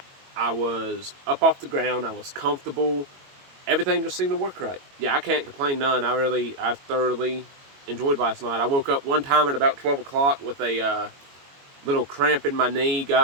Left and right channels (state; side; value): late; left; 22 ms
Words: I was up off the ground. I was comfortable. Everything just seemed to work right. Yeah, I can't complain none. I thoroughly enjoyed last night. I woke up one time at about 12 o'clock with a little cramp in my knee,